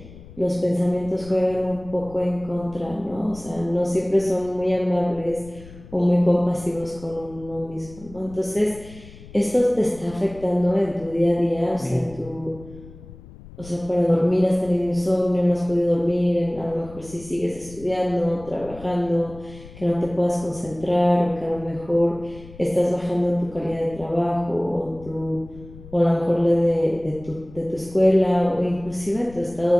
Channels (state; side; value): noise; left; rumble, 18 dB below the sound